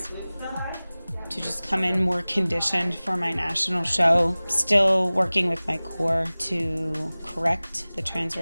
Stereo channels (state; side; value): inverted; both; correlation -0.99